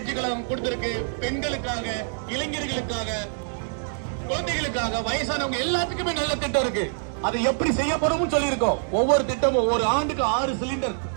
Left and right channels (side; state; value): left; silent; digital silence